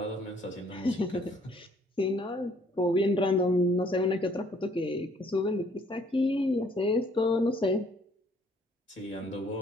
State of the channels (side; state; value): both; normal; correlation 0.62